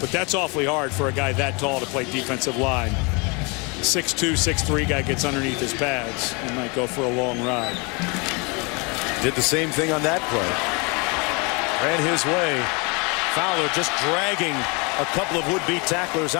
that's awfully hard for a guy that tall to play defensive line. 6'2", 6'3" guy gets underneath his pads. He might go for a long ride. Did the same thing on that play. Ran his way. Fowler just dragging a couple of would-be tacklers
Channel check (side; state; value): right; quieter; 30.4 dB